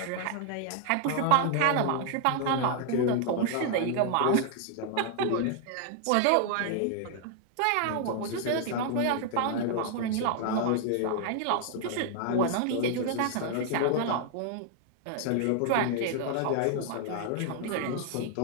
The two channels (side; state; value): both; different; correlation 0.00